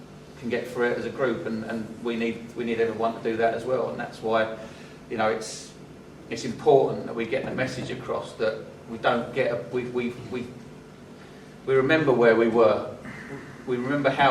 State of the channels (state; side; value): identical; both; correlation 1.00